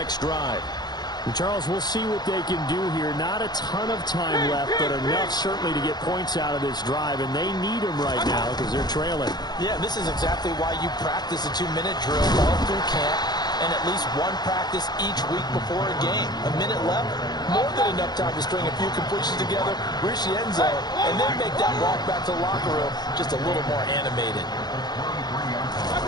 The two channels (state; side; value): late; right; 0.20 ms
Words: drive. And Charles, we'll see what they can do here. Not a ton of time left, but enough certainly to get points out of this drive, and they need them right now because they're trailing. Yeah, this is exactly why you practice a 2-minute drill all through camp and at least one practice each week before a game. A minute left, more than enough time to string a few completions together, reach the end zone, and then make that walk back to the locker room just a little more animated.